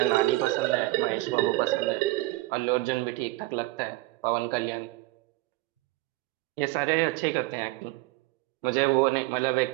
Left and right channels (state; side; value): quieter; left; 20.3 dB